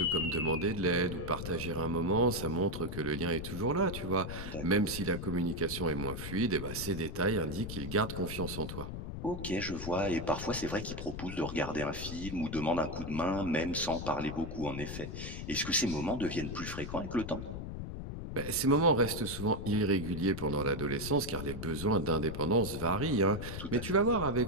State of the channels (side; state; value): left; noise; rumble, 7 dB below the sound